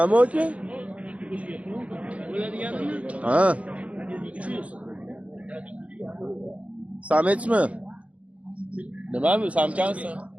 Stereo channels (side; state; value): left; late; 0.065 ms